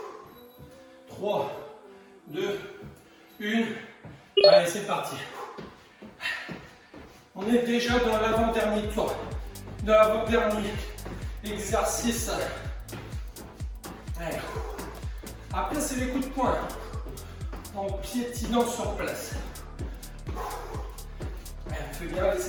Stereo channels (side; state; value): both; identical; correlation 1.00